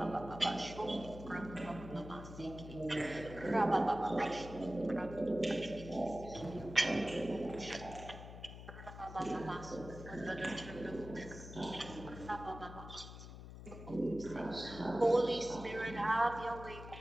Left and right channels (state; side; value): noise; left; hum, 12 dB below the sound